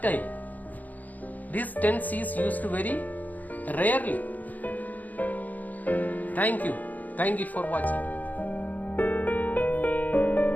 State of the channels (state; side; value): late; right; 0.080 ms